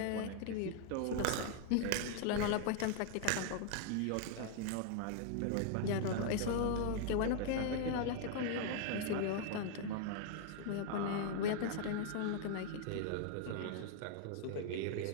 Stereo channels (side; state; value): both; different; correlation 0.00